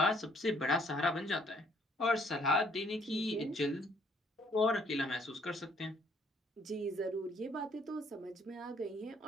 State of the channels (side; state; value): both; normal; correlation 0.64